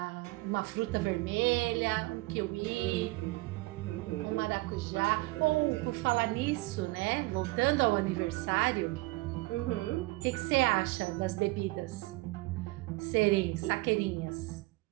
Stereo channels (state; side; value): quieter; left; 22.3 dB